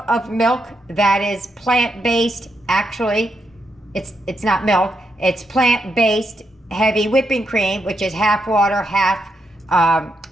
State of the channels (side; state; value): both; normal; correlation 0.81